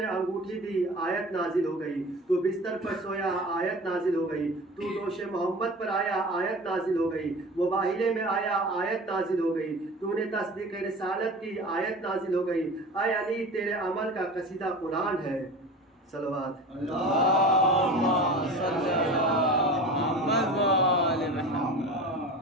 انگوٹھی دی، آیت نازل ہو گئی۔ تو بستر پر سویا، آیت نازل ہو گئی۔ تو دوش محمد پر آیا، آیت نازل ہو گئی۔ مباہلے میں آیا، آیت نازل ہو گئی۔ تو نے تصدیق رسالت کی، آیت نازل ہو گئی۔ اے علی، تیرے عمل کا قصیدہ قرآن ہے۔ صلوات اللہم صلی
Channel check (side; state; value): both; normal; correlation 0.35